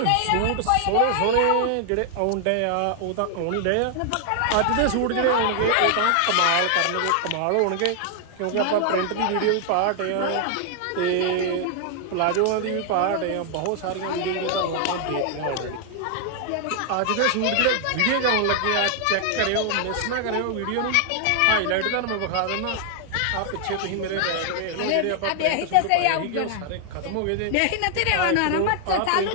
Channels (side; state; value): both; different; correlation 0.00